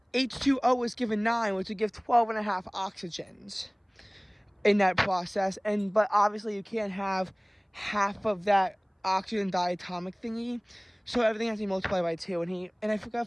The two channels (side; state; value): both; identical; correlation 1.00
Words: H2O was given 9, which would give 12.5 oxygens in that process. But obviously you can't have half of that oxygen diatomic thingy, so everything has to be multiplied by 2. And I